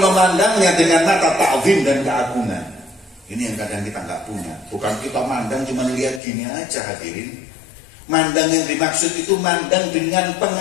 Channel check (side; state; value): right; drops out; at 6.2 s